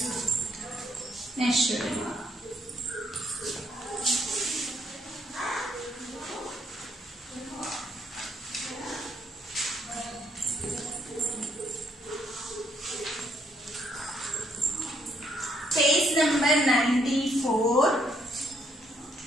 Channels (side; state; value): both; normal; correlation 0.71